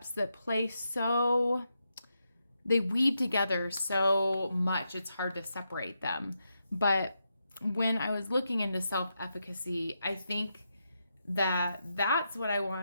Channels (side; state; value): both; inverted; correlation -0.84